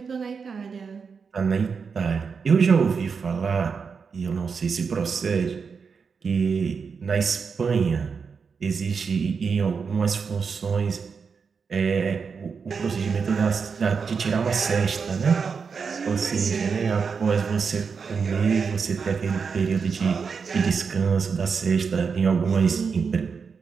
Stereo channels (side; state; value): left; quieter; 5.7 dB